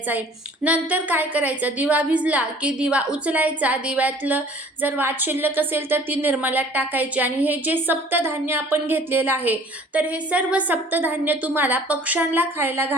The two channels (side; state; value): both; normal; correlation 0.51